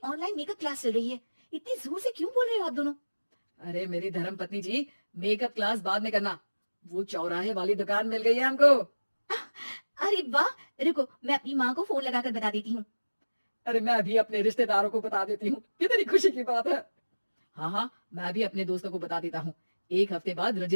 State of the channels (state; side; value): inverted; both; correlation -1.00